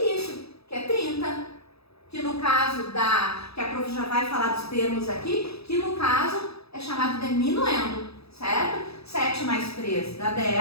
que é 30. Que no caso que a prof já vai falar dos termos aqui, que no caso é chamado de minuendo, certo? 7 mais 3 dá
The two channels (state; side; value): late; right; 0.78 ms